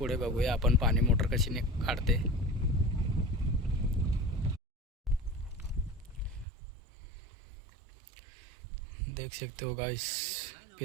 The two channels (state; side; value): drops out; left; at 6.5 s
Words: बघूया आपण पाणी मोटर कशी काढते. देख सकते हो गाइस,